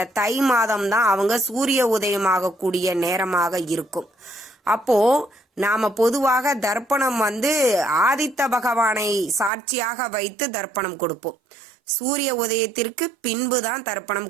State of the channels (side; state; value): left; drops out; at 9.5 s